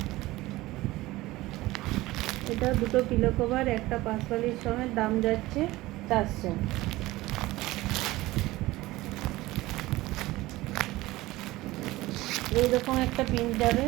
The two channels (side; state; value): left; quieter; 18.5 dB